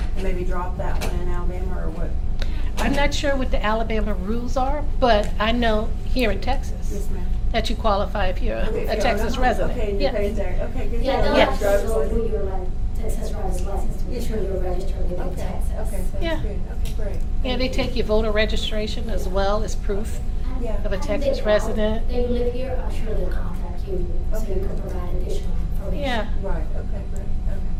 maybe drop that one in Alabama, or what? I'm not sure what the Alabama rules are, but I know here in Texas Yes, ma'am. that you qualify if you're Okay, a if you're Texas on a home, resident. Okay, and Yeah. you're paying tax, okay, good. Yeah, they'll Yeah. have to Driver's go through license. your Texas driver's license to make sure you're registered within Okay, Texas. okay, Yeah. sounds good, okay, great. Yeah, they take your voter registration as well as proof Yeah. of a Texas resident. They live here, I'm sure they'll contact you, so Okay. you can provide additional information. Yeah. Right, okay, great,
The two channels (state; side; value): identical; both; correlation 1.00